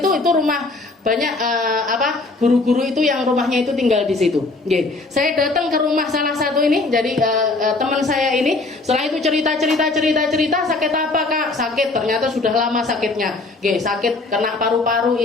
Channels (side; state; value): right; quieter; 3.4 dB